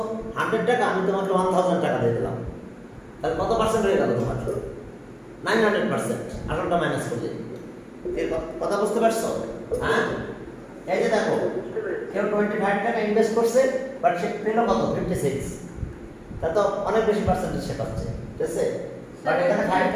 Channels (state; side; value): identical; both; correlation 1.00